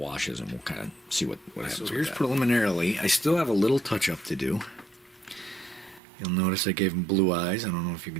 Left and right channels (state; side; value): drops out; left; at 6.0 s